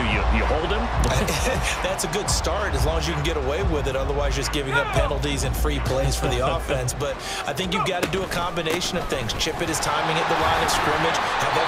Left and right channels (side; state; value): both; identical; correlation 1.00